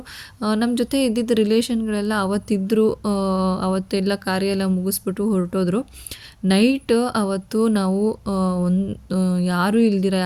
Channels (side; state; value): both; identical; correlation 1.00